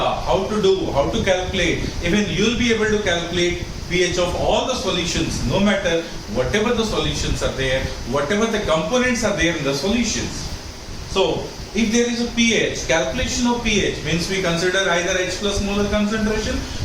to calculate, even you'll be able to calculate pH of all the solutions, no matter whatever the solutions are there, whatever the components are there in the solutions. So if there is a pH, calculation of pH means we consider either H plus molar concentration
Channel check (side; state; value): both; identical; correlation 1.00